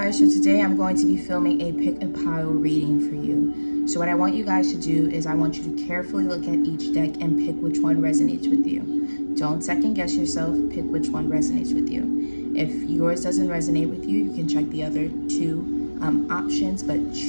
so today I'm going to be filming a pick a pile reading for you. So what I want you guys to do is I want you to carefully look at each deck and pick which one resonates with you. Don't second guess yourself, pick which one resonates with you. If yours doesn't resonate with you, you can check the other two options, but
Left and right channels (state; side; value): inverted; both; correlation -1.00